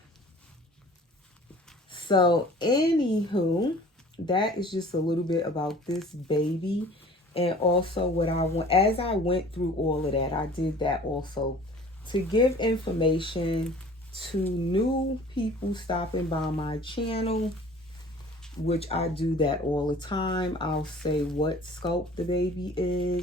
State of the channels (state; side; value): normal; both; correlation 0.47